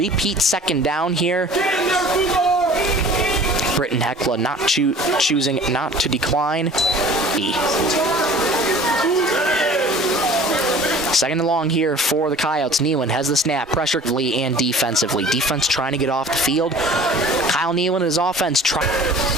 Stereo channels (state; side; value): normal; both; correlation 0.46